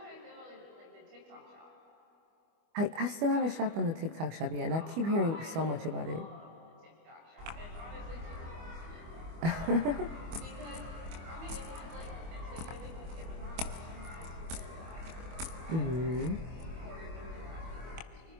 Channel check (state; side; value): late; left; 25 ms